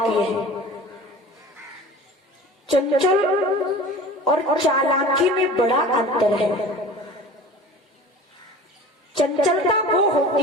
है। चंचल और चालाकी में बड़ा अंतर है। चंचलता वो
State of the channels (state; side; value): normal; both; correlation 0.39